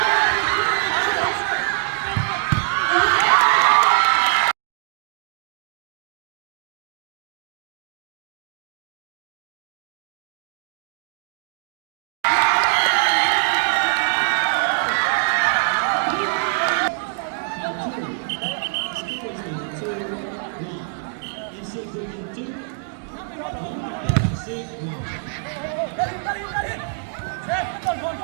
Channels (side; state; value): left; silent; digital silence